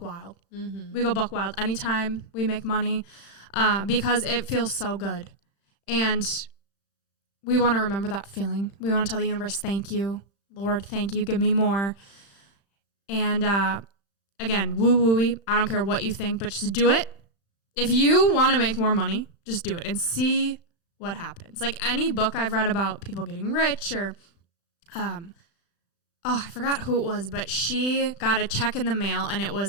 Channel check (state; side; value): late; right; 35 ms